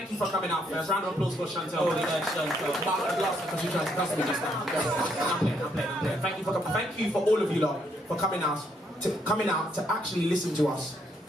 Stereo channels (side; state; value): both; normal; correlation 0.73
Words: you for coming out first. Round of applause for Chantel. Oh, Chantel. Last because you tried to cuss me just now. I'm playing. Thank you for coming. Thank you for all of you lot for coming out to actually listen to us